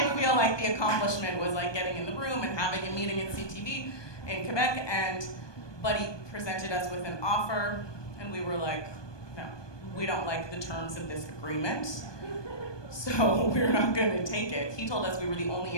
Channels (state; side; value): late; right; 1.2 ms